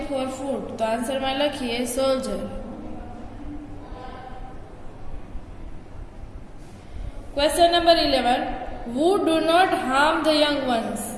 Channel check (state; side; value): identical; both; correlation 1.00